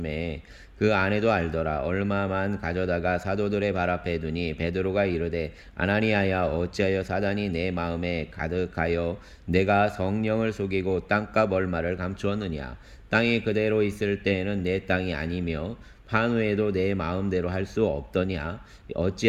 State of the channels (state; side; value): identical; both; correlation 1.00